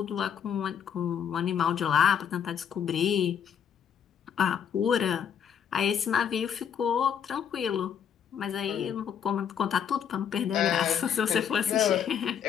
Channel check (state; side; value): quieter; right; 8.2 dB